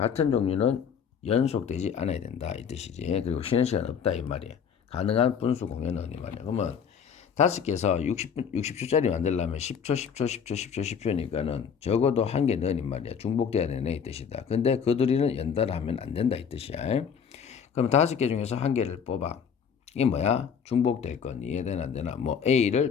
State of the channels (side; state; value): right; quieter; 7.1 dB